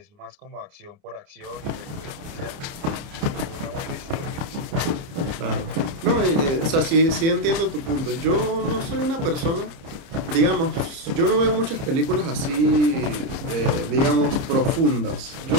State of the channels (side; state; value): left; late; 29 ms